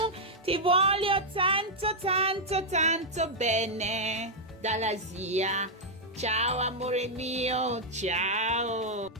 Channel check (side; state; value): both; normal; correlation -0.04